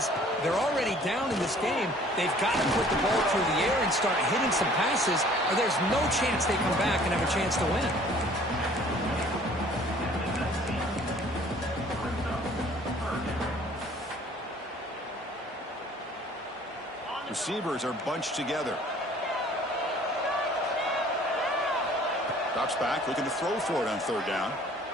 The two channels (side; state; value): both; normal; correlation 0.54